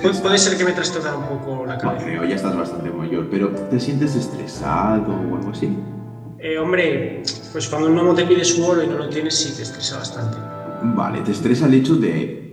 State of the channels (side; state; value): both; identical; correlation 1.00